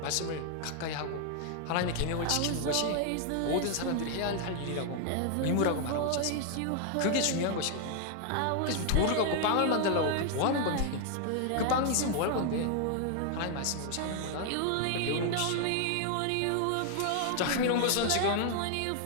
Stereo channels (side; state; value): both; different; correlation 0.00